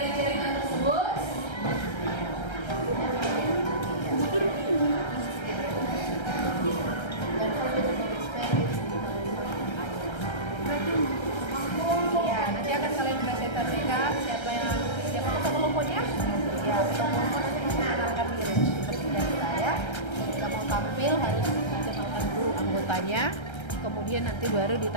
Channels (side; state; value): right; late; 1.3 ms